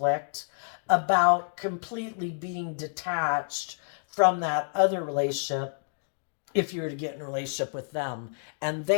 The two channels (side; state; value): right; silent; digital silence